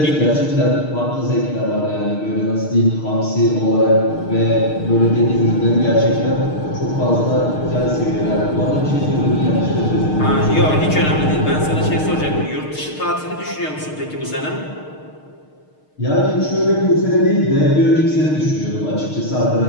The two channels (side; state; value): right; late; 6.5 ms